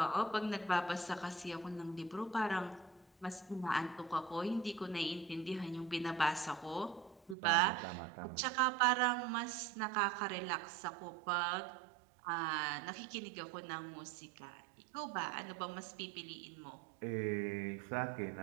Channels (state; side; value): drops out; left; at 7.4 s